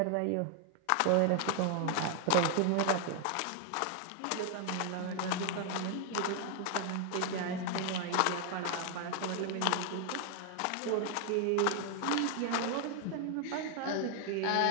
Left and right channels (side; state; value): both; different; correlation 0.00